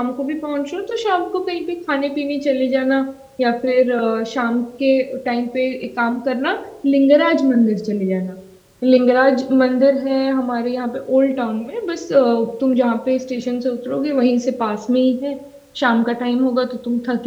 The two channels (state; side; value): identical; both; correlation 1.00